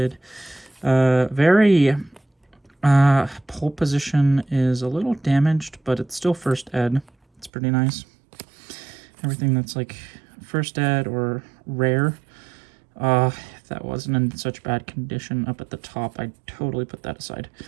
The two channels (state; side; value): drops out; left; at 7.5 s